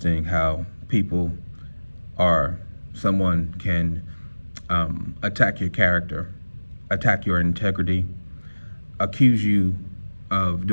how people or someone can attack your character, attack your integrity, accuse you of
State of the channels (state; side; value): inverted; both; correlation -1.00